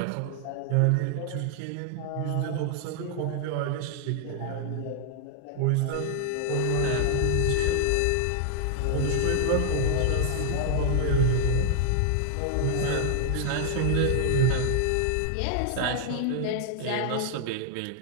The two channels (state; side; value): different; both; correlation 0.00